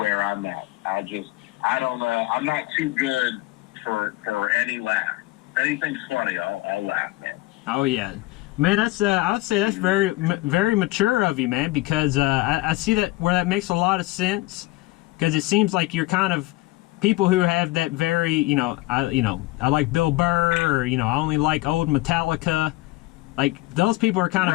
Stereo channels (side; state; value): right; quieter; 20.0 dB